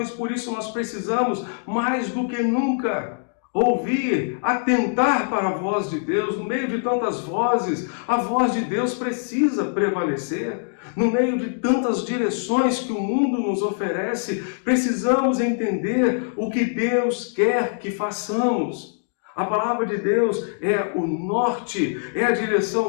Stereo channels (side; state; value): right; silent; digital silence